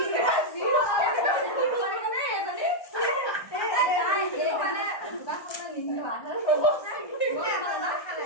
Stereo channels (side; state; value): right; late; 1.2 ms